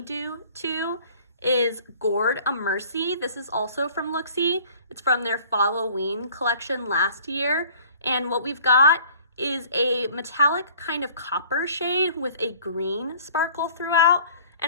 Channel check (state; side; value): inverted; both; correlation -0.51